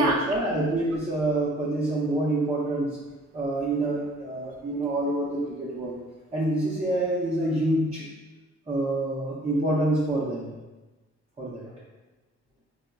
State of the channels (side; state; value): both; normal; correlation 0.55